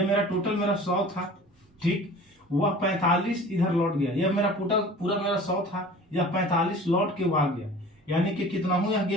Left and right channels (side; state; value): both; normal; correlation 0.43